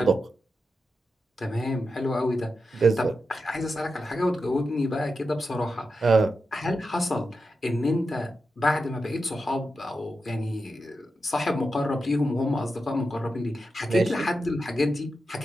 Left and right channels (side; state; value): both; normal; correlation 0.89